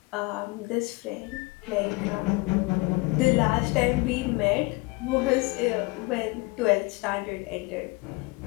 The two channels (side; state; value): right; quieter; 25.1 dB